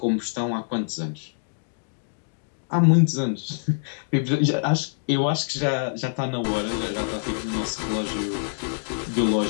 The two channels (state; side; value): silent; right; digital silence